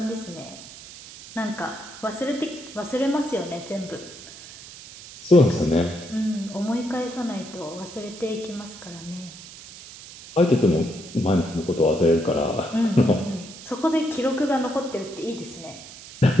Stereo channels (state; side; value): noise; right; hiss, 16 dB below the sound